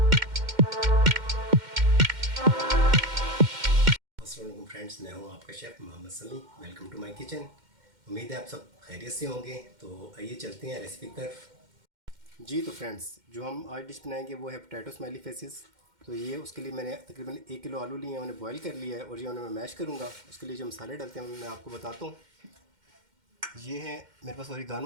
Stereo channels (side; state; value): left; late; 2.1 ms